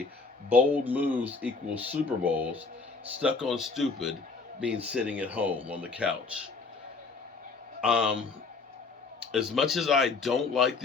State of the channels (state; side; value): quieter; right; 4.3 dB